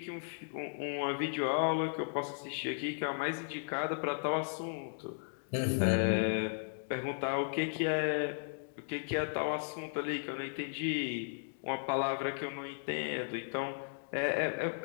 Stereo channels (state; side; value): silent; right; digital silence